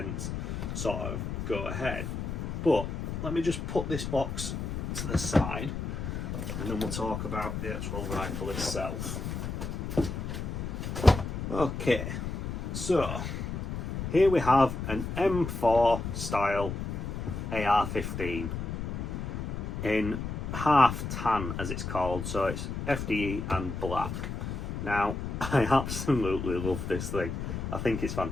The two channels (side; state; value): left; noise; rumble, 4 dB below the sound